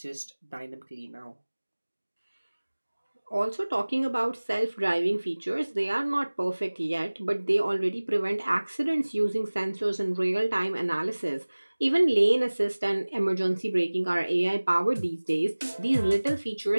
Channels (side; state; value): both; inverted; correlation -1.00